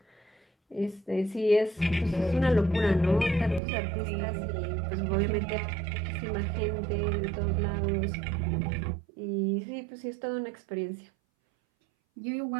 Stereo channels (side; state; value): left; drops out; at 3.6 s